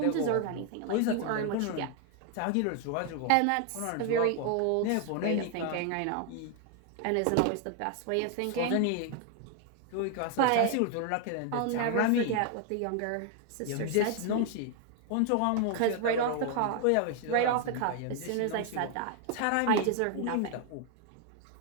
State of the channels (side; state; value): both; different; correlation 0.00